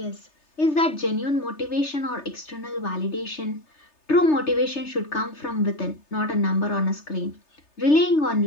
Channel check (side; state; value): right; late; 3.3 ms